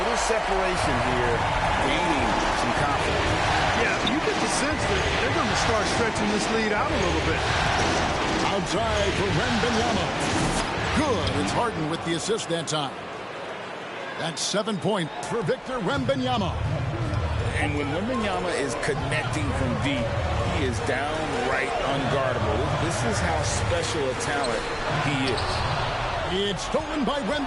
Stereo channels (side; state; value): both; identical; correlation 1.00